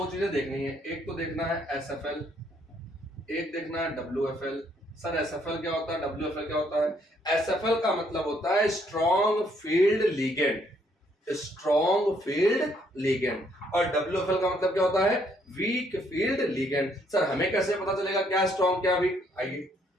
चीजें देखनी है। एक तो देखना है SFL, एक देखना है WFL। सर SFL क्या होता है? WFL क्या होता है? SFL का मतलब होता है strong field ligand. Strong field ligand. और WFL का मतलब क्या होता है? Weak field ligand. सर हमें कैसे पता चलेगा क्या स्ट्रॉन्ग क्या वीक? आइए,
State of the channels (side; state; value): both; normal; correlation 0.69